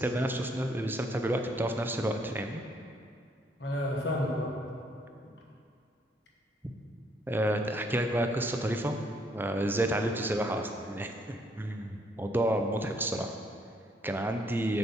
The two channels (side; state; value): both; normal; correlation 0.68